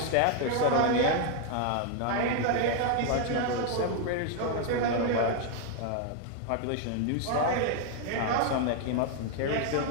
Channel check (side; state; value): both; different; correlation 0.00